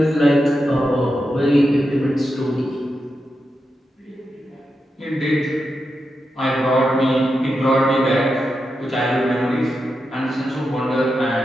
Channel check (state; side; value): normal; both; correlation 0.88